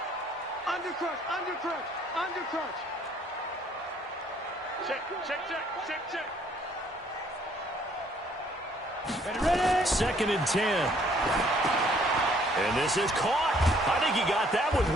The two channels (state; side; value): normal; both; correlation 0.63